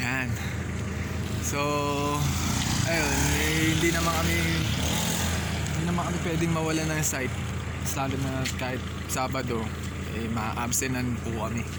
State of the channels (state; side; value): identical; both; correlation 1.00